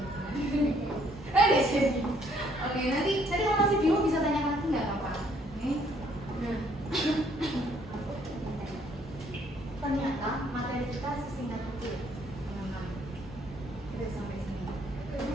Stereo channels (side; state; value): both; normal; correlation 0.65